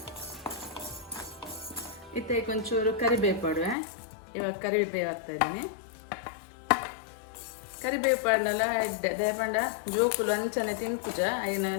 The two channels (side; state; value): right; drops out; at 3.8 s